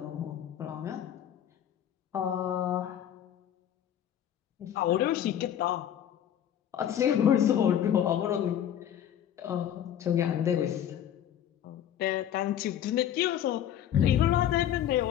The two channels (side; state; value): right; quieter; 10.3 dB